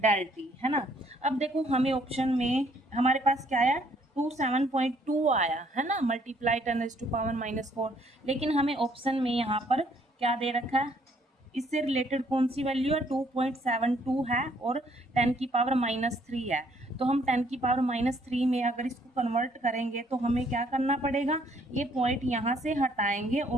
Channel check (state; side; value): normal; both; correlation 0.65